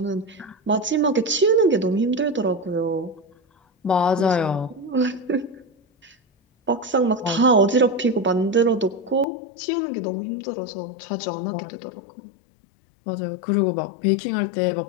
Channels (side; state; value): right; drops out; at 9.2 s